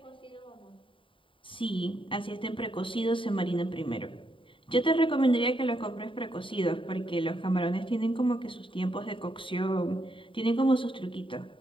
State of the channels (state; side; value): late; right; 0.25 ms